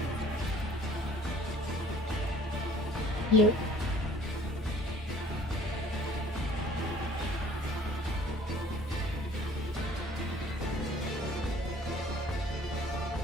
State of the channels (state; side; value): normal; both; correlation 0.53